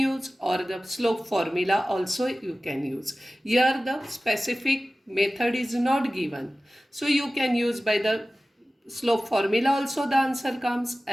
or the slope formula also you can use. Here the specific method is not given. So you can use by the slope formula also the answer comes,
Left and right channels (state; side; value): normal; both; correlation 0.96